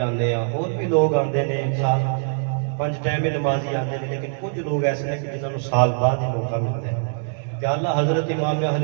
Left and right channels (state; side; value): silent; left; digital silence